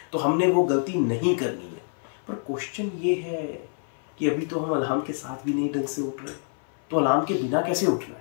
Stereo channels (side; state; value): right; silent; 57 dB below the other